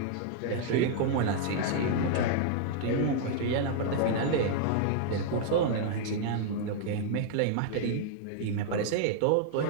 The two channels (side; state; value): both; different; correlation -0.01